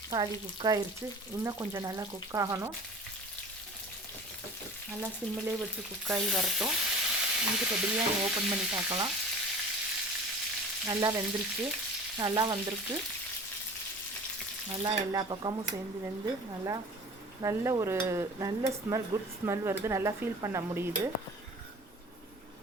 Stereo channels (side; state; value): both; normal; correlation 0.41